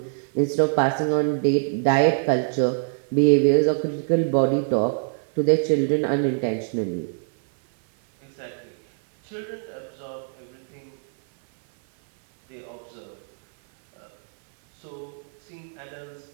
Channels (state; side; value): silent; left; 57 dB below the other